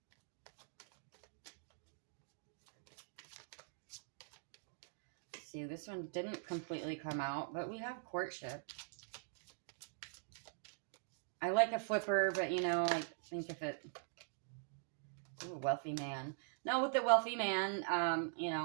Let's see, this one didn't completely come out, but we have courtship. I like a flipper, but I think if it... Ooh, wealthy man. Now with the wealthy man,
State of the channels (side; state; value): left; silent; digital silence